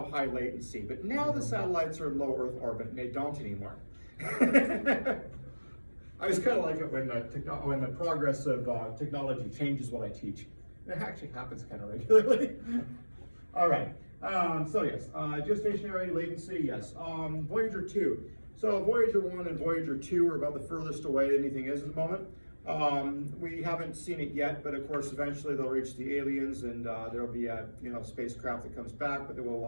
high latency, but now the satellites are in low Earth orbit and they don't anymore. I just kind of like it when the progress of technology changes what I teach. It actually happens kind of regularly. All right. So yes, geostationary latency, yes. Voyager 2. So Voyager 1 and Voyager 2 are about the furthest away anything is at the moment. We haven't seen it yet, but of course eventually they'll reach the aliens, and there'll be a spacecraft that comes back, but they will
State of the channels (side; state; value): both; inverted; correlation -1.00